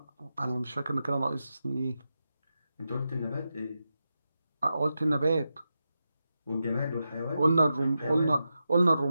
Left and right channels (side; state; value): both; inverted; correlation -0.89